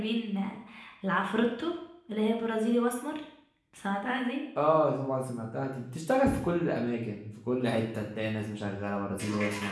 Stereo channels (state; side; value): identical; both; correlation 1.00